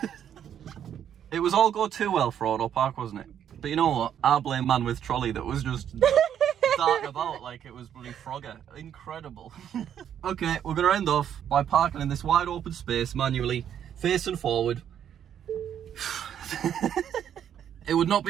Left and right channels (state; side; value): quieter; left; 9.4 dB